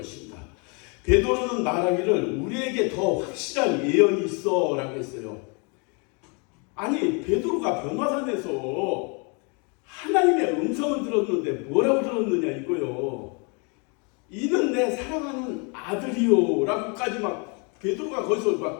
베드로는 말하기를 우리에게 더 확실한 예언이 있어 라고 했어요. 아니 베드로가 변화산에서 하나님의 음성을 들었는데 뭐라고 들었느냐 이거요. 이는 내 사랑하는 아들이요 라고까지 막 베드로가 거기서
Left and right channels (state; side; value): quieter; right; 34.0 dB